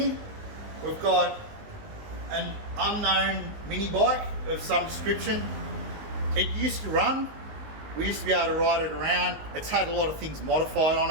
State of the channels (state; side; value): late; left; 19 ms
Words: we've got an unknown mini bike of some description. It used to run. We used to be able to ride it around. It's had a lot of things modified on